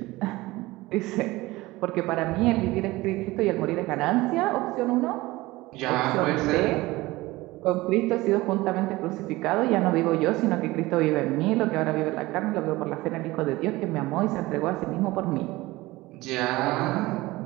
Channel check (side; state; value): left; quieter; 19.8 dB